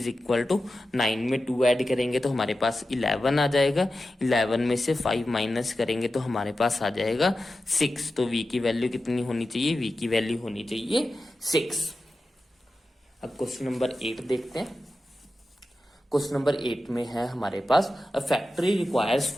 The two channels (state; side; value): normal; both; correlation 0.92